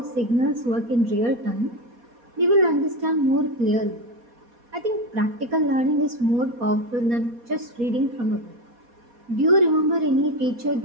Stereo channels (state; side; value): late; left; 4.2 ms